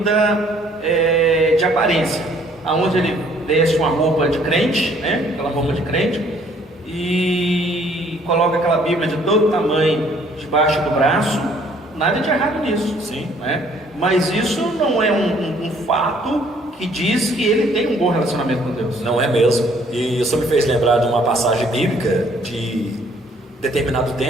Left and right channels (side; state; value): both; normal; correlation 0.61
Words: de aparência, aonde ele veste uma roupa de crente, né? Aquela roupa de crente, e coloca aquela Bíblia de todo tamanho debaixo do braço. Nada de errado nisso, sim, né? Mas isso não é um fato que diz que ele tem um bom relacionamento com Deus. Não é mesmo. E isso me fez lembrar de uma passagem bíblica de determinado